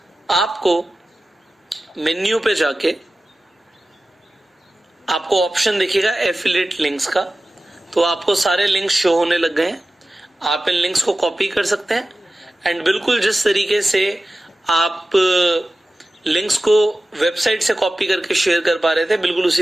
आपको मेन्यू पे जाके आपको ऑप्शन दिखेगा एफिलिएट लिंक्स का। तो आपको सारे लिंक्स शो होने लग गए हैं। आप इन लिंक्स को कॉपी कर सकते हैं एंड बिल्कुल जिस तरीके से आप लिंक्स को वेबसाइट से कॉपी करके शेयर कर पा रहे थे, बिल्कुल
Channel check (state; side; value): normal; both; correlation 0.95